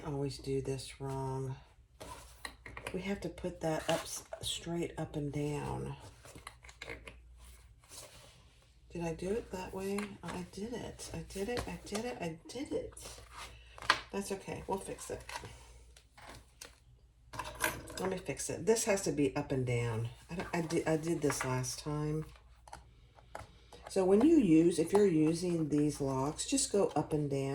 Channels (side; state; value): both; identical; correlation 1.00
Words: always do this wrong. We have to put that up straight up and down. Did I do it that way? I did it. I did it. I did it. I did it. That's okay. We'll fix it. Let me fix it. This has to be up and down. I did this last time. So when you use, if you're using these locks, just go up and